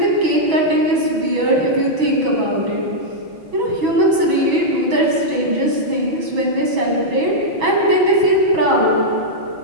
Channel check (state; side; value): late; left; 6.2 ms